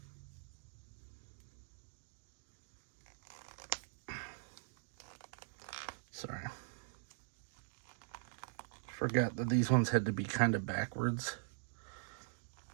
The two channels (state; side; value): silent; left; digital silence